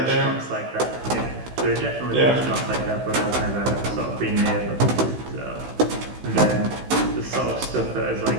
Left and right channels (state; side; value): late; left; 16 ms